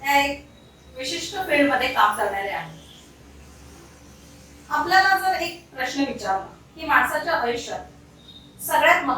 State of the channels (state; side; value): identical; both; correlation 1.00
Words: त्या एक विशिष्ट फील्डमध्ये काम करणाऱ्या आहेत. आपल्याला जर एक प्रश्न विचारला की माणसाच्या आयुष्यात सगळ्यात